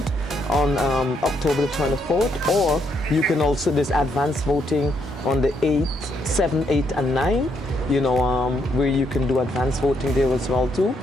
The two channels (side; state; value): both; normal; correlation 0.74